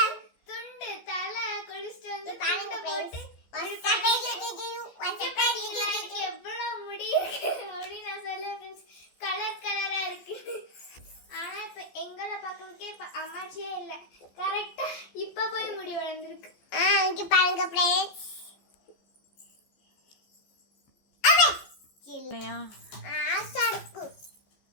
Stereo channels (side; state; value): right; late; 14 ms